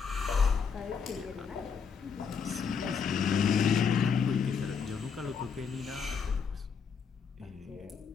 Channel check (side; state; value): right; quieter; 6.2 dB